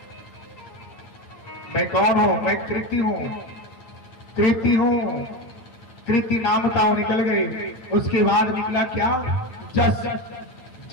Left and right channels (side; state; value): right; late; 9.0 ms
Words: मैं कौन हूं? मैं कृति हूं, कृति हूं। कृति नाम था, वो निकल गए। उसके बाद निकला क्या? जस।